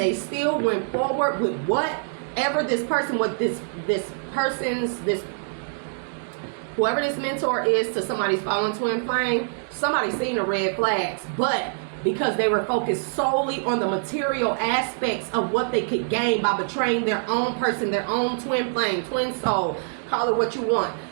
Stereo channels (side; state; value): left; silent; digital silence